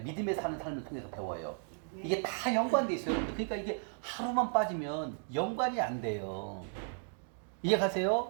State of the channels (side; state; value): left; silent; 55 dB below the other